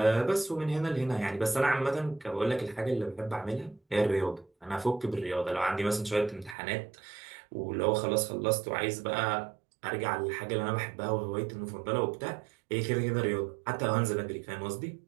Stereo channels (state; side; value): drops out; left; at 6.6 s